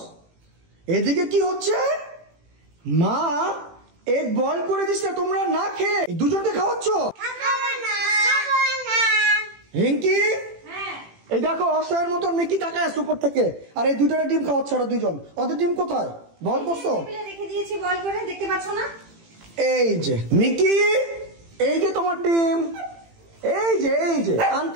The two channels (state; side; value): late; left; 18 ms